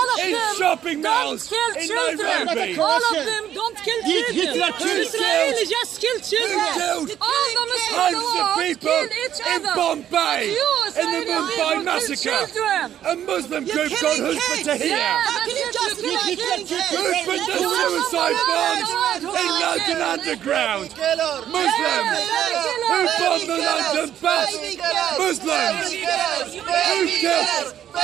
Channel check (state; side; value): quieter; left; 10.6 dB